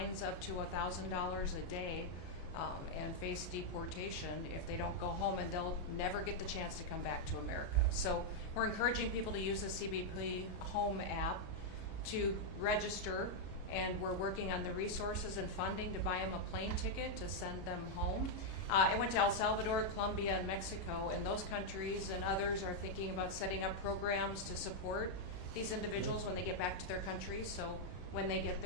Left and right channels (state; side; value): late; right; 33 ms